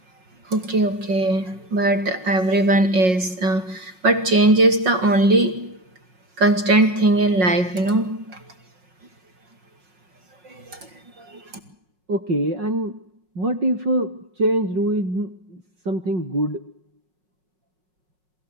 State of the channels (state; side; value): late; left; 5.5 ms